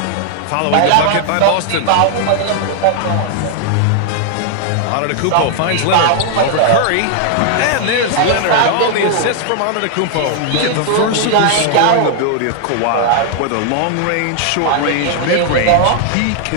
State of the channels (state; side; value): different; both; correlation -0.01